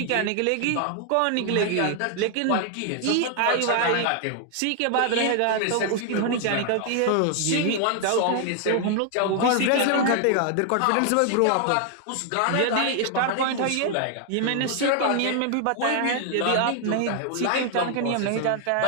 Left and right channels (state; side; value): different; both; correlation 0.00